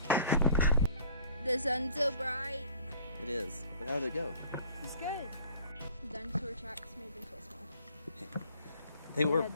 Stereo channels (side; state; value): both; inverted; correlation -0.52